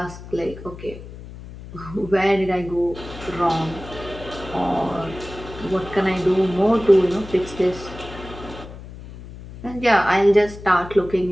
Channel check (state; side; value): noise; left; hum, 14 dB below the sound